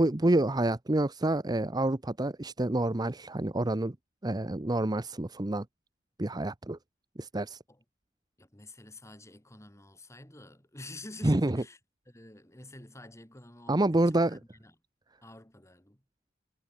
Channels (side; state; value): both; normal; correlation 0.79